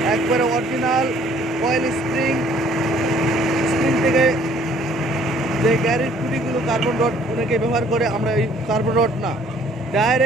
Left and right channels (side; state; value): both; normal; correlation 0.59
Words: একবারে অরিজিনাল কয়েল স্প্রিং থেকে যে গ্যারেজ খুঁটিগুলো কার্বন রড অনেকে ব্যবহার করে, আমরা এই কার্বন রড না,